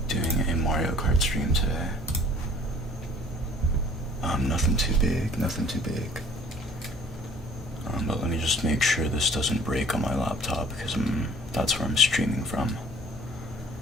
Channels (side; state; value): both; normal; correlation 0.53